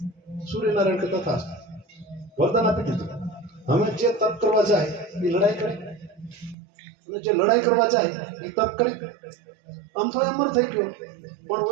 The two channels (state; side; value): drops out; left; at 6.6 s